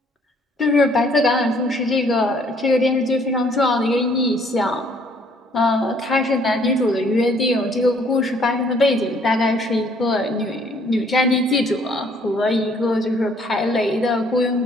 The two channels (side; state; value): both; normal; correlation 0.62